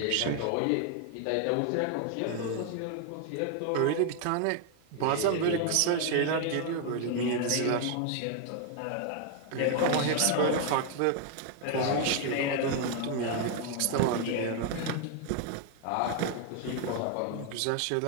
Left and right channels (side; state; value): both; different; correlation 0.00